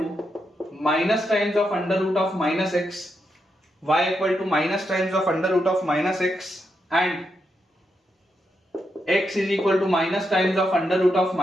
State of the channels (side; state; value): both; normal; correlation 0.83